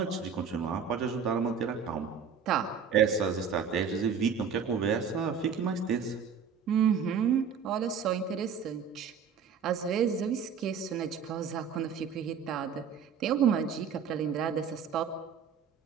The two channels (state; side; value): quieter; left; 6.7 dB